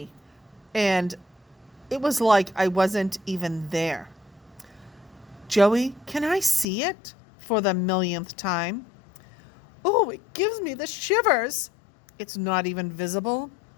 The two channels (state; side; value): drops out; right; at 6.7 s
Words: And it was like I wasn't even there. "Joey, can I see it?" For the millionth time. "Oh, it gives me the shivers." "It's not even visible."